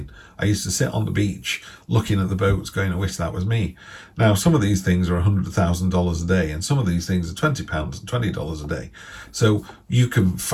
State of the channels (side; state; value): both; identical; correlation 1.00